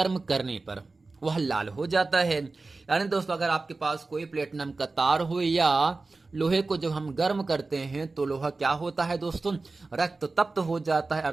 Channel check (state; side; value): quieter; left; 3.6 dB